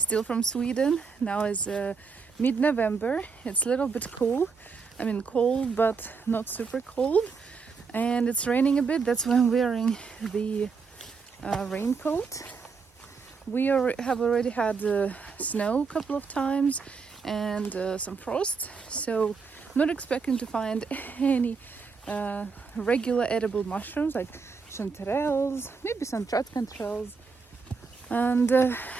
from Sweden. Now is mid-November. It's a little bit cool. I mean cold, but not super cold. And it's raining a bit. That's why I'm wearing the raincoat. We have already had snow a couple of times and some frost. So not expecting to find any regular edible mushrooms like chanterelles, maybe some tratkantrels. And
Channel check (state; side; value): quieter; left; 5.2 dB